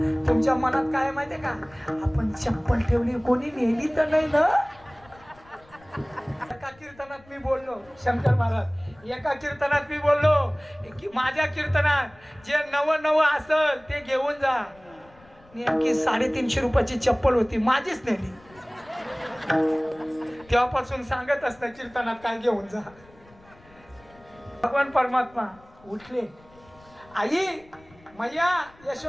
तुमच्या मनात काय माहितीये का? आपण चप्पल ठेवली, कोणी नेली तर नाही ना. एका कीर्तनात मी बोललो, शंकर महाराज, एका कीर्तनात मी बोललो की माझ्या कीर्तनात जे नवं असेल ते घेऊन जा. नेमकी 350 रुपयाची चप्पल होती, माझीच नेली. तेव्हापासून सांगत असतं कीर्तनात काय घेऊन जा. भगवान परमात्मा उठले. आई मैया,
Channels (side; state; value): left; noise; rumble, 27 dB below the sound